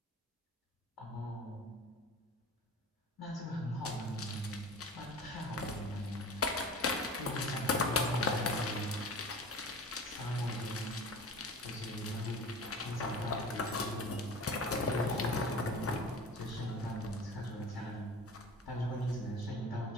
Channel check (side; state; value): both; normal; correlation 0.38